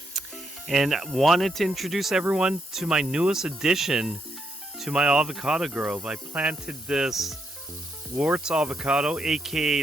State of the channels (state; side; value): normal; both; correlation 0.78